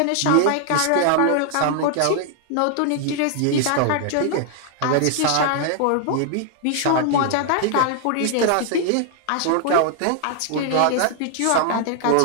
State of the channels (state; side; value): different; both; correlation 0.00